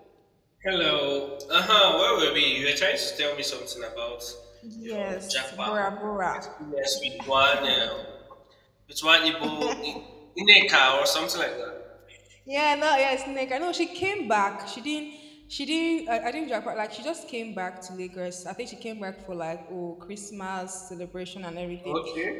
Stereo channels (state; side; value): identical; both; correlation 1.00